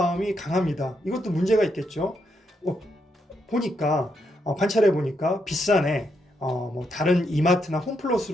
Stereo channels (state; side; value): normal; both; correlation 0.79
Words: 강합니다. 이것도 문제가 있겠죠. 보니까 관찰해 보니까 비싸네. 뭐 다른 이마트나